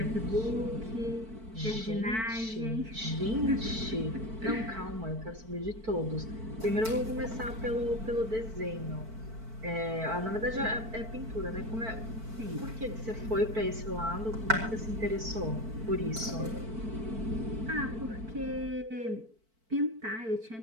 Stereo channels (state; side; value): late; left; 4.5 ms